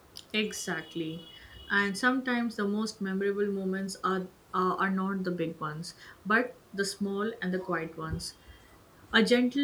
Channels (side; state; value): both; identical; correlation 1.00